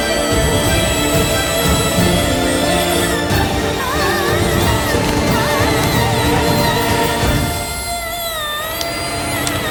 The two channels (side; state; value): both; identical; correlation 1.00